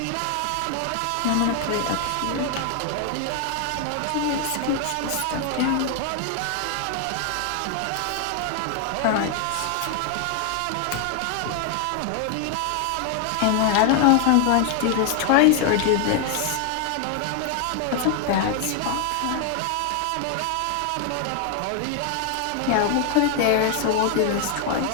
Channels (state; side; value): different; both; correlation 0.00